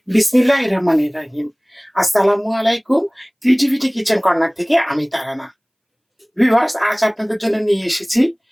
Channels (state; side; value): identical; both; correlation 1.00